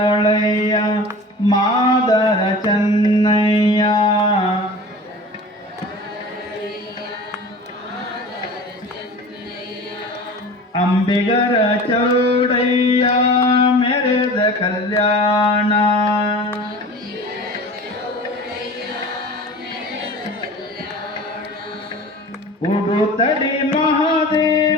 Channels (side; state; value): both; normal; correlation 0.38